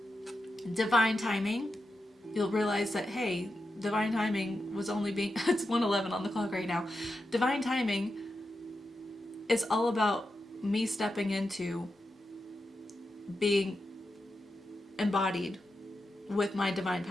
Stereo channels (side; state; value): both; normal; correlation 0.89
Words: divine timing, you'll realize that, hey, divine timing was only being, it's 1:11 on the clock right now. Divine timing is all about me stepping into being embodied with my divine